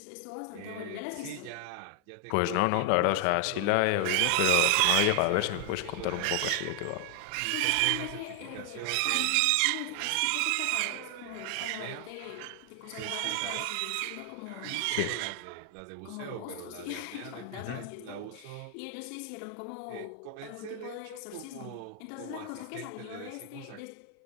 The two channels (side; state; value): both; different; correlation 0.00